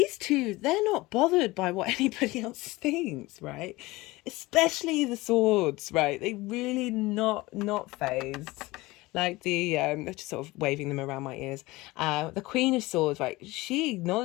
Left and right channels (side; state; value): right; quieter; 20.7 dB